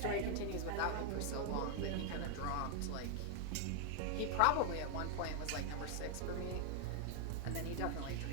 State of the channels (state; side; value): different; both; correlation 0.00